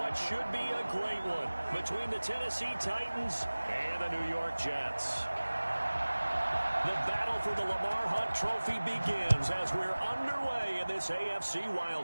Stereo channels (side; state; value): both; inverted; correlation -1.00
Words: should be a great one between the Tennessee Titans and the New York Jets. The battle for the Lamar Hunt Trophy begins as we're underway in this AFC